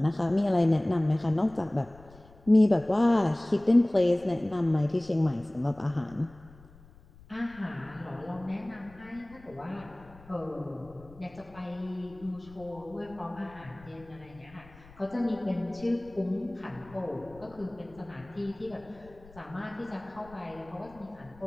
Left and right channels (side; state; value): left; noise; rumble, 23 dB below the sound